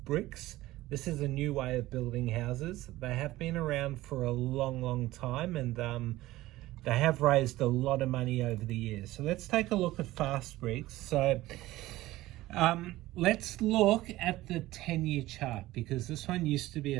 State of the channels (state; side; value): quieter; left; 17.0 dB